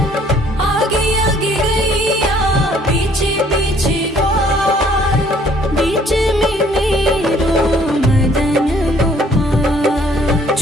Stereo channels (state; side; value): normal; both; correlation 0.61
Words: आगे आगे गैया पीछे पीछे ग्वाल, बीच में मेरो मदन गोपाल।